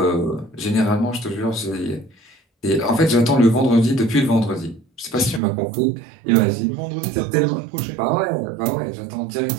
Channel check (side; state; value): left; drops out; at 5.4 s